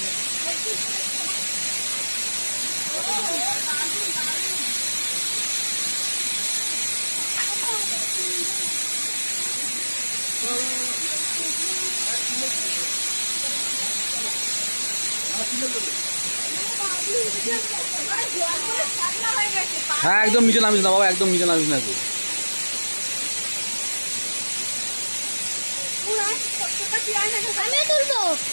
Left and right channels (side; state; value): both; inverted; correlation -1.00